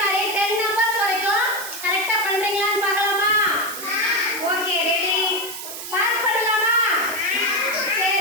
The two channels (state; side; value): noise; right; hiss, 9 dB below the sound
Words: 10 நம்பர்ஸ் வரைக்கும் கரெக்டாக பண்ணுறீங்களான்னு பார்க்கலாமா? Okay, ready? பாஸ் பண்ணலாமா?